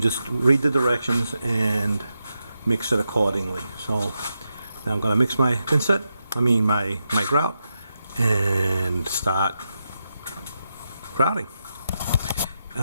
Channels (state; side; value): inverted; both; correlation -0.87